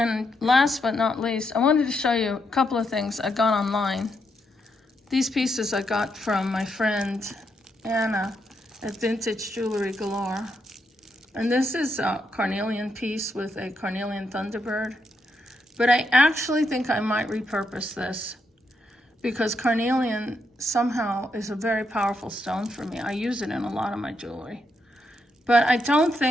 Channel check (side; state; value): both; normal; correlation 0.80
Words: last but not least, I wanted to show you a couple of things I got online. These pieces I got from my friend Anna at Vintage Jewelry Galore. And this is a carnelian piece with a carnelian thunderbird. But I actually think I might repurpose this, because carnelian somehow is a very powerful stone for me. I use it in a lot of my jewelry. But I don't